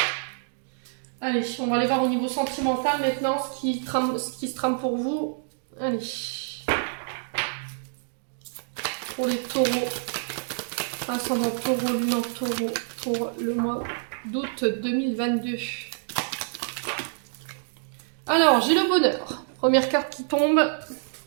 Allez, on va aller voir au niveau sentimental maintenant ce qui se trame pour vous. Allez. Pour les taureaux. Ascendant taureau, lune en taureau pour le mois d'août 2022. Alors, j'ai le bonheur. Première carte qui tombe.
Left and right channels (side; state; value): left; silent; digital silence